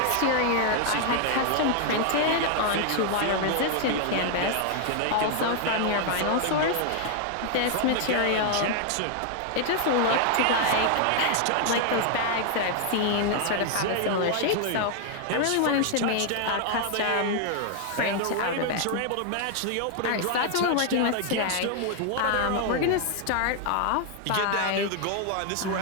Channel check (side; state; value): both; different; correlation 0.00